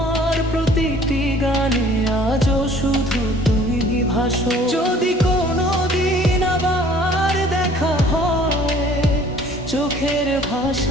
প্রতিটি গানে, আজও শুধু তুমি ভাসো। যদি কোনো দিন আবার দেখা হয়, চোখের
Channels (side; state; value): both; normal; correlation 0.53